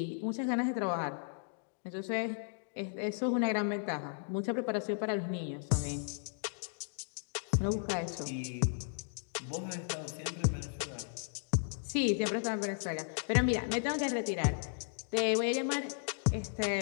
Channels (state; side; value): silent; right; digital silence